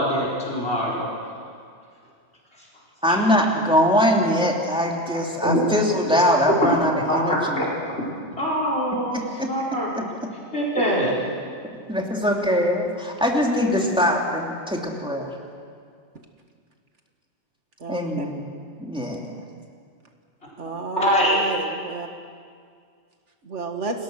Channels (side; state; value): both; normal; correlation 0.23